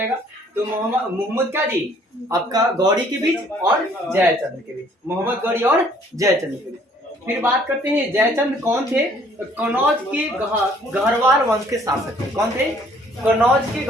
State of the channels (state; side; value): normal; both; correlation 0.60